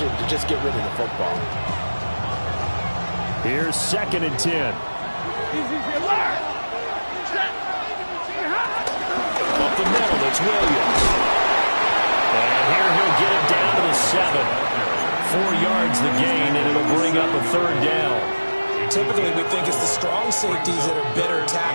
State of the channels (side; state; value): both; inverted; correlation -1.00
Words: to just get rid of the football. Here's 2nd and 10. Up the middle, it's Williams. And here he'll get it down to the 7. 4 yards the gain, and it'll bring up a third down. Typically, we think it's the strong safeties that are better